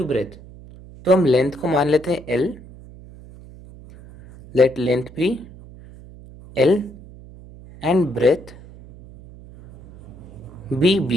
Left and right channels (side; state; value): right; noise; hum, 19 dB below the sound